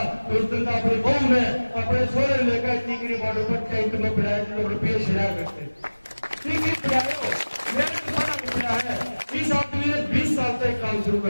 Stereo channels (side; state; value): both; inverted; correlation -1.00